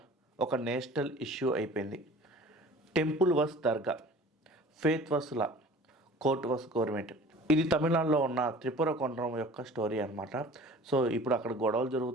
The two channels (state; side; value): normal; both; correlation 0.44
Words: ఒక నేషనల్ ఇష్యూ అయిపోయింది. టెంపుల్ వస్ దర్గా, ఫేత్ వస్ లా, కోర్ట్ వస్ గవర్నమెంట్. ఇది తమిళనాడులో ఉన్న త్రిపుర కొండరం యొక్క స్టోరీ అనమాట. సో ఇప్పుడు అక్కడ గొడవలు